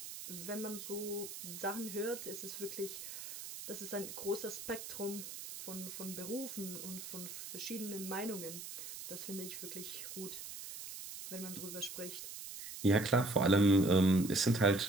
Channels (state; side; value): noise; right; hiss, 10 dB below the sound